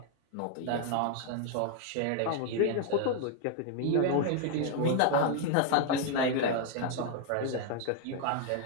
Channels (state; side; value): different; both; correlation 0.00